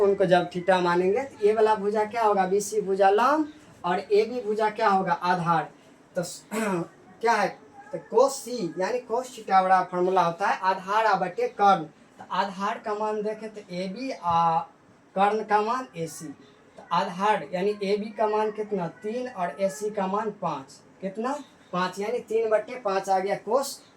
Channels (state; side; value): identical; both; correlation 1.00